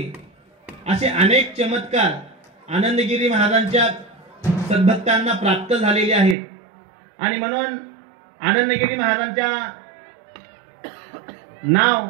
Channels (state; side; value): drops out; left; at 6.4 s